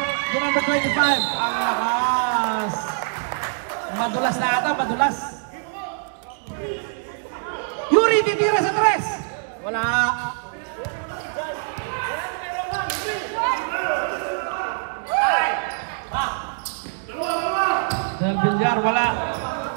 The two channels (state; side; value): silent; left; digital silence